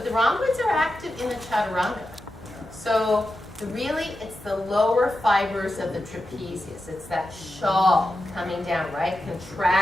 the rhomboids are active in the chaturanga. So really, it's the lower fibers of the trapezius. It's that shawl coming down, right?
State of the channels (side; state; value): both; normal; correlation 0.90